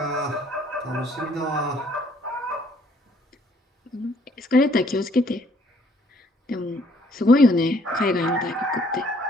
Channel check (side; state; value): both; normal; correlation 0.63